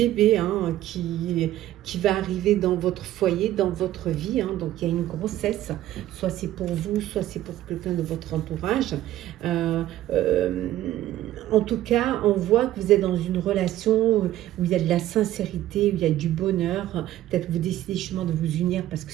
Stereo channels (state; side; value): quieter; left; 13.8 dB